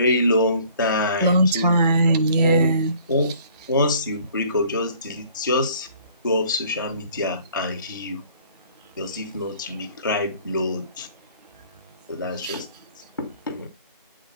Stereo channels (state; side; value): inverted; both; correlation -0.56